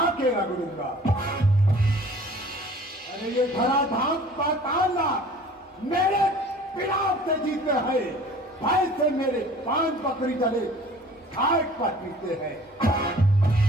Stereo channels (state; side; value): normal; both; correlation 0.48